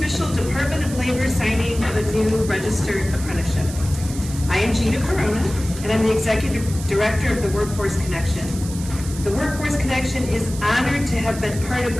Department of Labor signing of a new registered apprenticeship. I am Gina Corona, and I'm the Executive Director of the Workforce Connection. The Workforce Connection is honored to have been part of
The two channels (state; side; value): noise; right; hiss, 13 dB below the sound